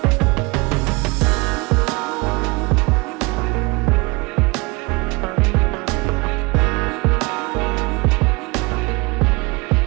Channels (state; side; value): quieter; left; 26.5 dB